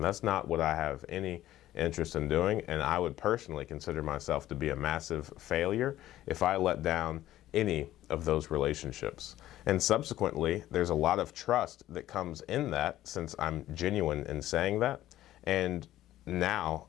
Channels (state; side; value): quieter; right; 14.0 dB